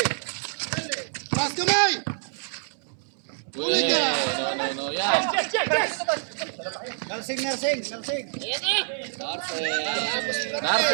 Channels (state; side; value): silent; left; digital silence